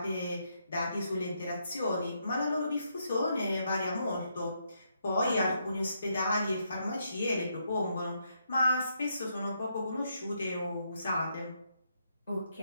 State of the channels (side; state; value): both; inverted; correlation -0.78